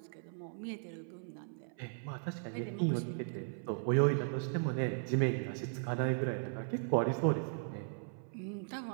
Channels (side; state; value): left; silent; 53 dB below the other